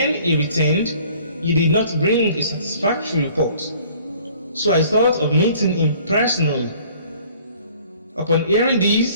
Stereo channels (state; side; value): inverted; both; correlation -0.54